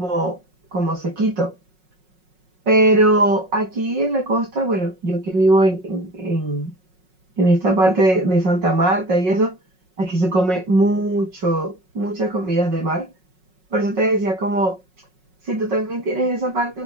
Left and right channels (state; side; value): late; left; 5.4 ms